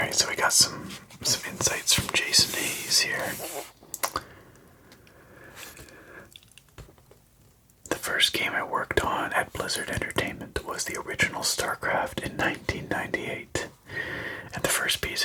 so we got some insights from Jason Hayes here. The first game I worked on at Blizzard Entertainment Starcraft in 1998. And the first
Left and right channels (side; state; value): both; identical; correlation 1.00